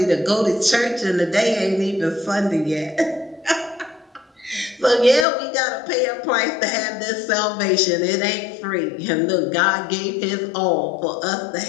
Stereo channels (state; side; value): drops out; right; at 5.2 s